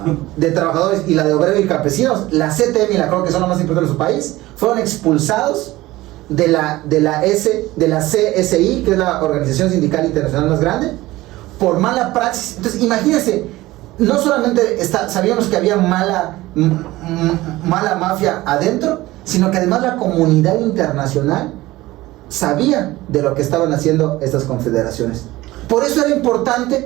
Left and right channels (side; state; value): left; quieter; 18.0 dB